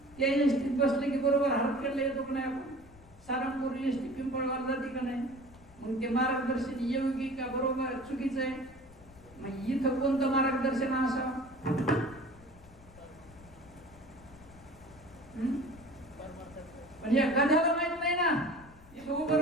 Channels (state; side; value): noise; left; rumble, 23 dB below the sound